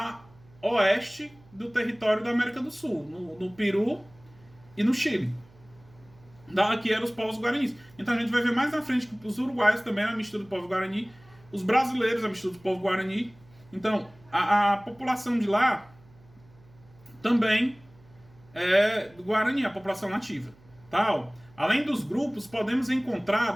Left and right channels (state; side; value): noise; right; hum, 26 dB below the sound